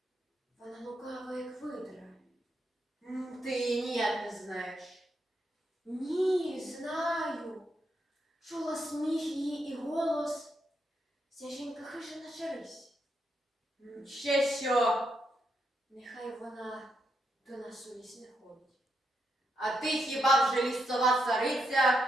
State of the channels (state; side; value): normal; both; correlation 0.81